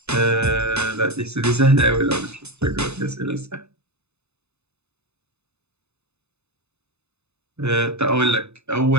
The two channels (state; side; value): late; left; 0.81 ms